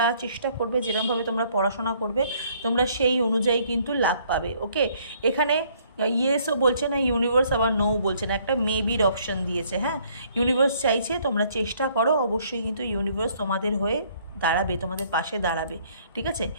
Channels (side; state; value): both; inverted; correlation -0.64